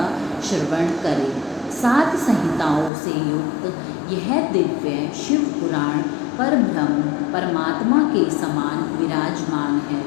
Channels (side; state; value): right; drops out; at 2.9 s